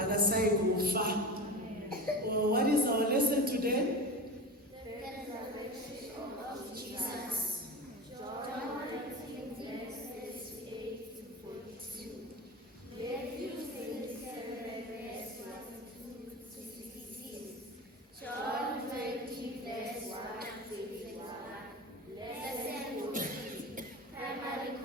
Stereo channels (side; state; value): both; normal; correlation 0.28